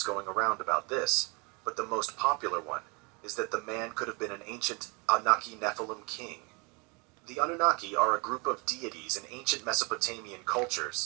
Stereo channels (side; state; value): left; quieter; 30.1 dB